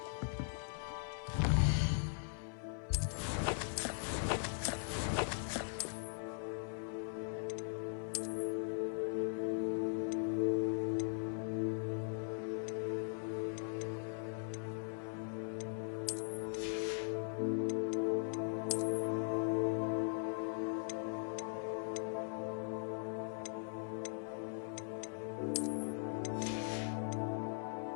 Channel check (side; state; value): right; silent; digital silence